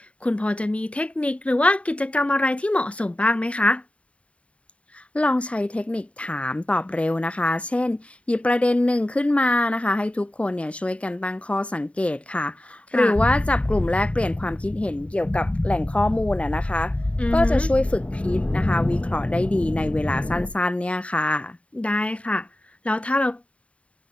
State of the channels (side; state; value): right; late; 0.063 ms